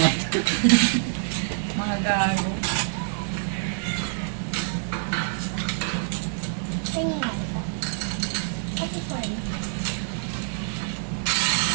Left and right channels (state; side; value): silent; left; digital silence